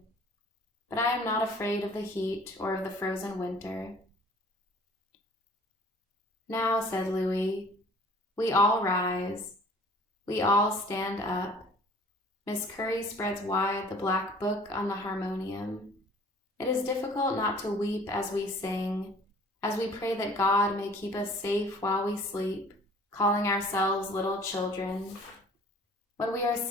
But I am not afraid of the heat or of the frozen winter. Now, said Louis, we all rise. We all stand up. Miss Curry spreads wide the black book on the harmonium. It is difficult not to weep as we sing, as we pray that God may keep us safe while we sleep, calling ourselves little children. When we are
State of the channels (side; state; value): both; normal; correlation 0.51